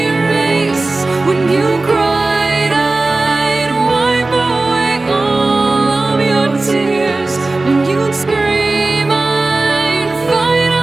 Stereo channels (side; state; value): left; quieter; 3.2 dB